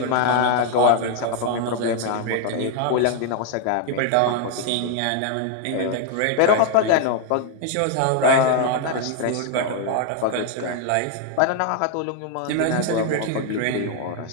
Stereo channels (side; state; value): both; different; correlation 0.00